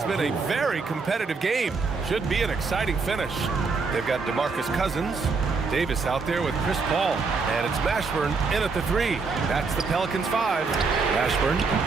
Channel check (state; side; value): quieter; left; 4.5 dB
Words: been a very competitive game. Should be an exciting finish. They've got DeMarcus Cousins. Davis out there with Chris Paul. And it's Mashburn in at the 3. That's the Pelicans 5. Mashburn.